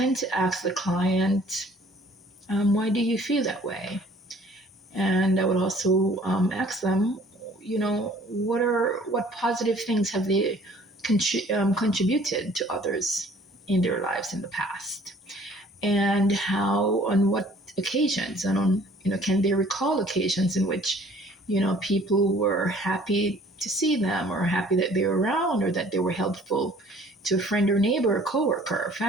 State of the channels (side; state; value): both; normal; correlation 0.54